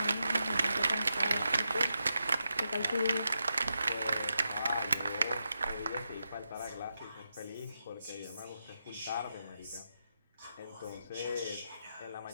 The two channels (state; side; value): inverted; both; correlation -0.86